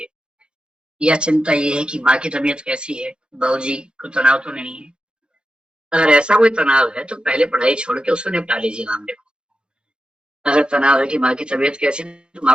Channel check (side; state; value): left; late; 0.051 ms